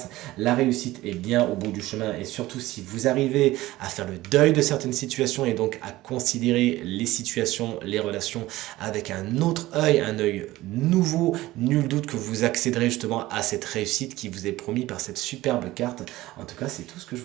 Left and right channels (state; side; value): quieter; left; 17.3 dB